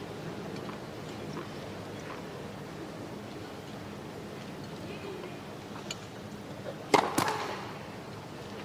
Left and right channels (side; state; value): both; identical; correlation 1.00